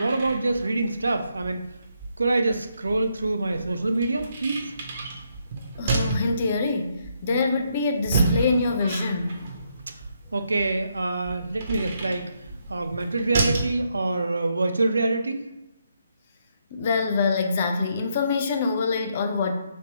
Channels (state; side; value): inverted; both; correlation -0.76